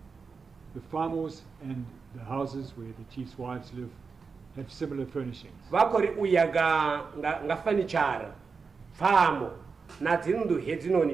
the famos and the houses where the chief's wives live have similar furnishings? Vakori uya nga furniture famo na dzindu hedzinoni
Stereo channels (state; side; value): quieter; left; 5.0 dB